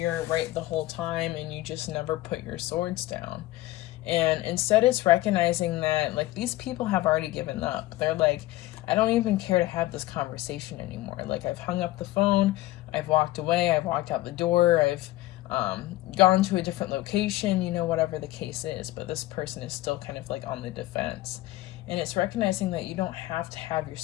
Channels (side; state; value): right; quieter; 17.0 dB